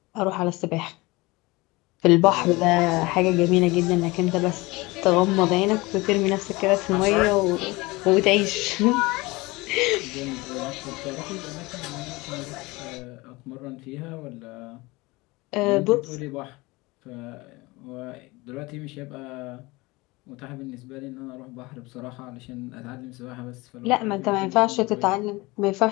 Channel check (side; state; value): right; quieter; 22.9 dB